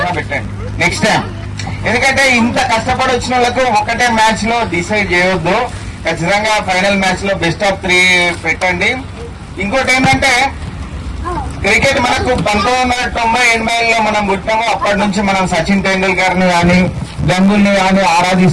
పెట్టండి నెక్స్ట్ టైం. ఎందుకంటే ఇంత కష్టపడి వచ్చిన వాళ్ళకు ఒకటే మ్యాచ్ లో డిసైడ్ చేయొద్దు. ఖచ్చితంగా ఫైనల్ మ్యాచ్ లో బెస్ట్ ఆఫ్ 3 పెట్టండి. ఇంకోటి ఏంటంటే క్రికెట్ మనకు 1990-80లో మనం పుట్టాము. అప్పటి నుంచి మనం సచిన్ టెండూల్కర్ ని కానీ గంగూలీని కానీ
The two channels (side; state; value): both; identical; correlation 1.00